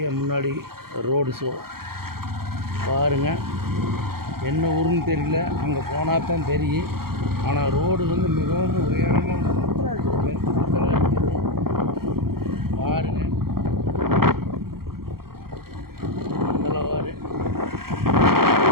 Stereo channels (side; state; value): left; late; 0.94 ms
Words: முன்னாடி ரோடு ஷோ பாருங்கள். என்ன ஊருன்னு தெரியல, அங்கே போனால் தான் தெரியும். ஆனால் ரோடு வந்து மிகவும் உயரமாக பாருங்கள். நல்லவாறு